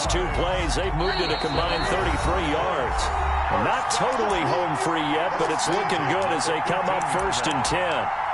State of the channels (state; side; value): identical; both; correlation 1.00